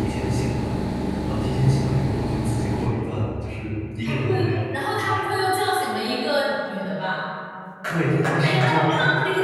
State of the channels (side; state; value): both; identical; correlation 1.00